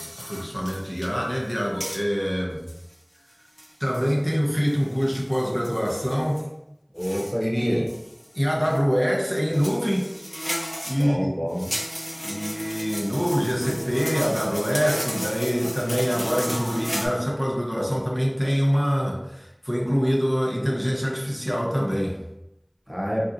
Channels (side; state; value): both; identical; correlation 1.00